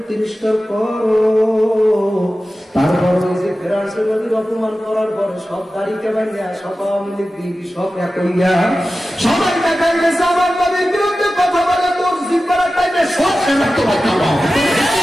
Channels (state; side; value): normal; both; correlation 0.94